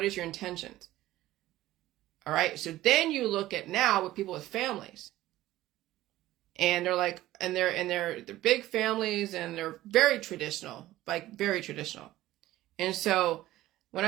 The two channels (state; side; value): quieter; left; 15.6 dB